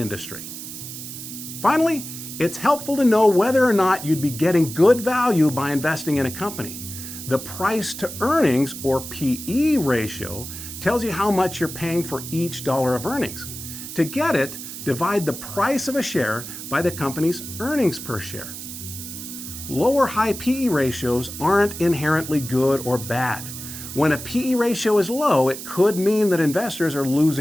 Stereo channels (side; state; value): right; noise; hiss, 10 dB below the sound